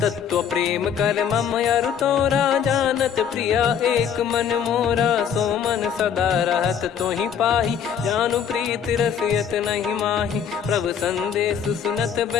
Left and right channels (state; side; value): quieter; right; 8.0 dB